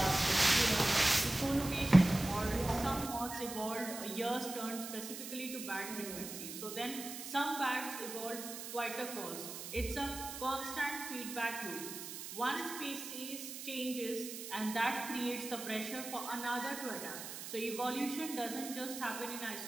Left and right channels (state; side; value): noise; right; hiss, 9 dB below the sound